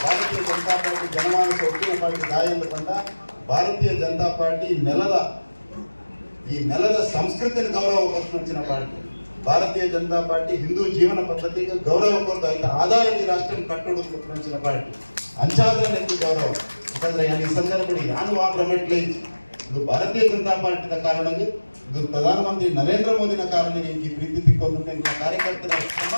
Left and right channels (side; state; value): both; inverted; correlation -1.00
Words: ಭಾರತೀಯ ಜನತಾ ಪಾರ್ಟಿ ಜನಮಾನಸ ಒಟ್ಟಿನ ಪಾರ್ಟಿ ದಾಯ ಎಂದುಕೊಂಡ ಭಾರತೀಯ ಜನತಾ ಪಾರ್ಟಿ ನೆಲದ ಸಂಸ್ಕೃತಿಯನ್ನು ಗೌರವ ಕೊಟ್ಟಿನ ಪಾರ್ಟಿ. ಭಾರತೀಯ ಜನತಾ ಪಾರ್ಟಿ ಹಿಂದೂ ಜೀವನ ಪದ್ಧತಿಗೆ ಗೌರವ ಕೊಡ್ತಾ ಇದ್ದ ಆಧಾರದ ಈ ರಾಷ್ಟ್ರ ಕಟ್ಟೋದು ಕೊಟ್ಟಿನ ಪಾರ್ಟಿ ಅಂಚಾದ್ರೆ ನೆನಪು ಗೌರವ. ಯಾಕಂದ್ರೆ ಈ ಸಂದರ್ಭದಲ್ಲಿ ಯಾನು ಆ ಪ್ರಮೆಟ್ಲೆ ಇದು ಭಾರತೀಯ ಜನತಾ ಪಾರ್ಟಿದ ಕಾರಣಕ್ಕೆ ಇದು ಪ್ರಧಾನಮಂತ್ರಿ ನರೇಂದ್ರ ಮೋದಿನ ಕಾರಣಕ್ಕೆ ಈ ಪ್ರೀತಿ ತಿಕ್ಕೊಂಡು ಕಾರ್ಯಕರ್ತರ